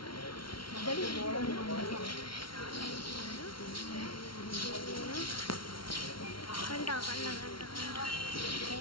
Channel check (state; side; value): late; right; 0.74 ms